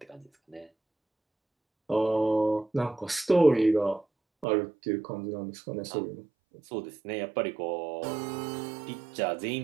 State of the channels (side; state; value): left; drops out; at 4.5 s